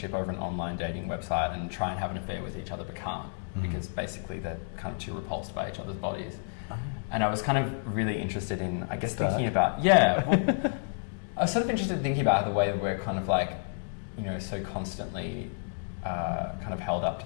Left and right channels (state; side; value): silent; right; digital silence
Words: over an online dating website and try and have an affair with each other but can't, because basically they're kind of too repulsed by each other's bodies. And I was kind of really interested in, I guess, thinking about, I was sort of interested in thinking about the way that we're kind of like, you know, so constantly kind of held up